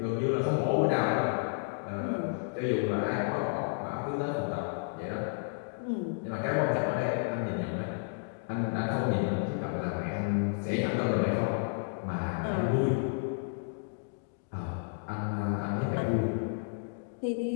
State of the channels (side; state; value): right; silent; digital silence